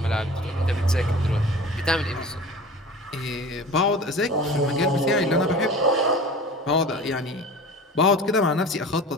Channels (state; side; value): normal; both; correlation 0.38